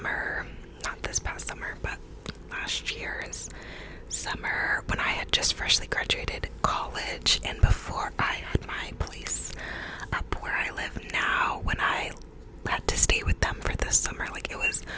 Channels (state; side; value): identical; both; correlation 1.00